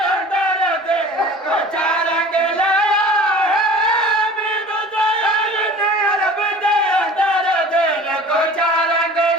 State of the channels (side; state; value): both; normal; correlation 0.43